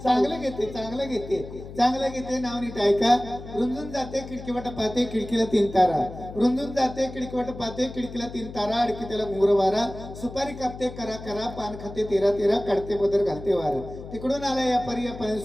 चांगलं घेते चांगलं घेते. चांगलं घेते नाव नीट ऐका. रुंजून जाते खिडकीवाटा पाहते खिडकीला 3 तारा. रुंजून जाते खिडकीवाटा पाहते खिडकीला 3 तारा. अडकी त्याला घुंगर वारा. सुपारी कापते करा करा. पान खाते 13 काढते पदर घालते वार. तिकडून आला या परी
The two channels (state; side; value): noise; left; hum, 13 dB below the sound